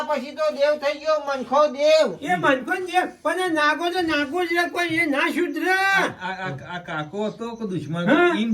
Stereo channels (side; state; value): both; identical; correlation 1.00